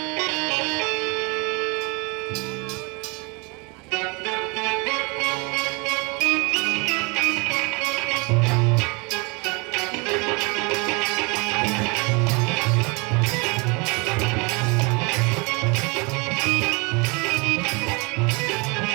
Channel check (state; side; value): quieter; left; 29.4 dB